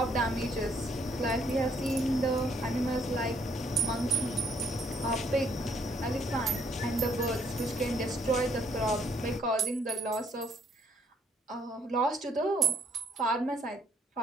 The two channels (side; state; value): both; normal; correlation 0.68